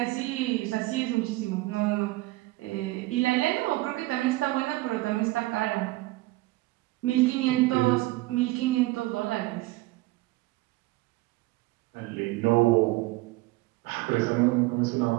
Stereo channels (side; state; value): left; quieter; 20.2 dB